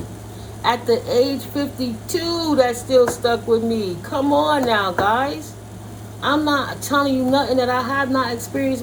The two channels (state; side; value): identical; both; correlation 1.00